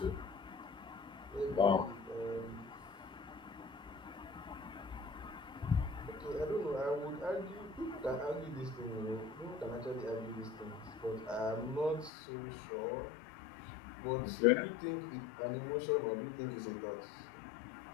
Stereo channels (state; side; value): drops out; right; at 12.1 s